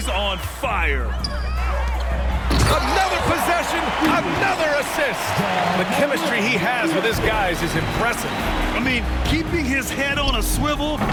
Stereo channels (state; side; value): identical; both; correlation 1.00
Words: on fire. Another possession, another assist. The chemistry he has with his guys is impressive. I mean, keeping his head on a swivel,